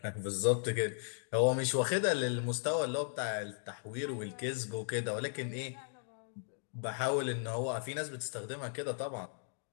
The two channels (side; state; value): right; silent; digital silence